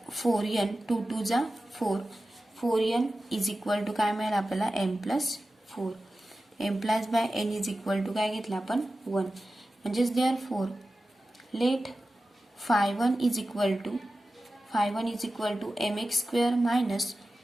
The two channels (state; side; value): normal; both; correlation 0.94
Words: 4n 2 2 जा 4n इज इक्वल टू काय मिळेल आपल्याला m plus 4 m plus by n is equal to काय घेतलं आपण 1 म्हणजेच therefore let phi1 is equal to mx square minus